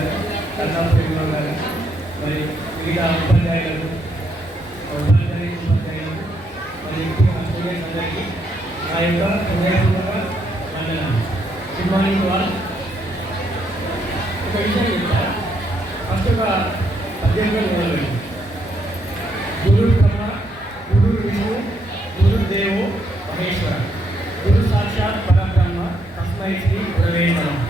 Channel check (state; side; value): normal; both; correlation 0.75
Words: కర్ణాటకలో గారు మరి మిగతా ఉపాధ్యాయులకు మరి స్టూడెంట్స్ అందరికీ నా యొక్క హృదయపూర్వక వందనాలు. గుడ్ మార్నింగ్ వాళ్ళు. ఒక విషయం చెప్తా. ఫస్ట్ ఒక పద్యంగా మొదలుపెట్టి గురు బ్రహ్మ గురు విష్ణు గురు దేవో మహేశ్వర గురు సాక్షాత్ పరబ్రహ్మ తస్మై శ్రీ గురవే నమః.